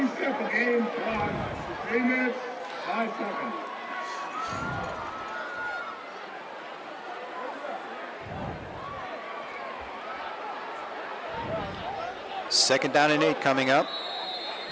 simple game clock. 3 minutes, 5 seconds. Second down and 8 coming up.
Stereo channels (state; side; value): identical; both; correlation 1.00